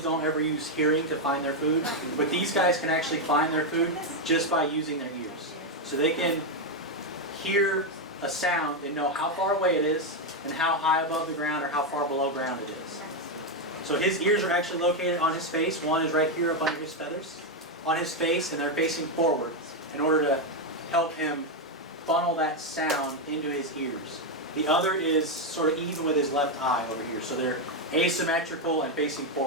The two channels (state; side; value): normal; both; correlation 0.04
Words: ever use hearing to find their food, but these guys can actually find their food just by using their ears. So they can hear a sound and know how far away it is and how high above the ground or how far below ground it is. So his ears are actually located on his face. One is right here up under his feathers on his face, and they're facing forward in order to help him funnel that sound into his ears. The other is sort of even with his left eye over here. So they're asymmetrical and facing